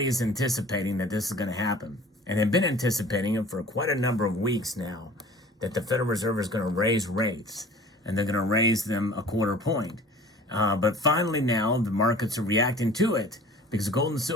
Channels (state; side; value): normal; both; correlation 0.46